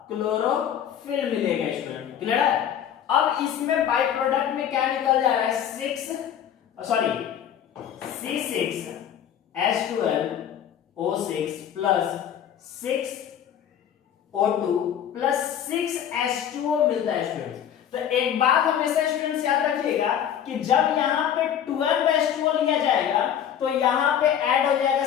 क्लोरोफिल मिलेगा स्टूडेंट, क्लियर है। अब इसमें बाय प्रोडक्ट में क्या निकल जा रहा है, C6H12O6 plus 6O2 plus 6H2O मिलता है स्टूडेंट्स। तो एक बात हमेशा स्टूडेंट्स याद रखिएगा कि जब यहाँ पे 12H2O लिया जाएगा तो यहाँ पे ऐड हो जाएगा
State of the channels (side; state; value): right; quieter; 9.5 dB